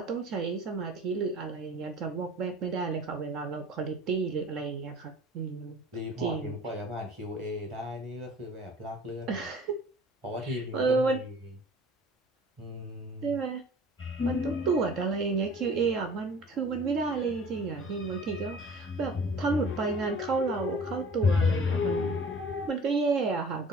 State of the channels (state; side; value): normal; both; correlation 0.47